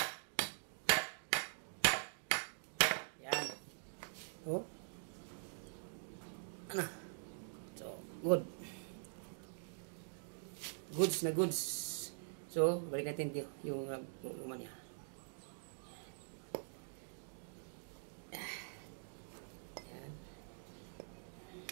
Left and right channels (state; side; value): silent; left; digital silence